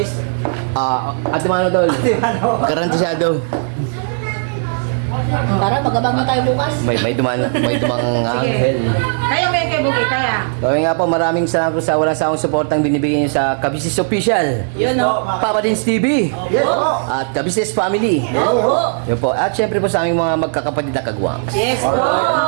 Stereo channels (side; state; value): left; silent; digital silence